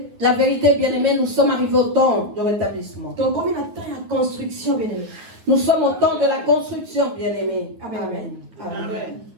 la vérité, bien-aimé. Nous sommes arrivés au temps de rétablissement. Combien de temps la construction, bien-aimé? Nous sommes au temps de la construction, bien-aimé. Amen. Amen. Amen.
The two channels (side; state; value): left; late; 9.4 ms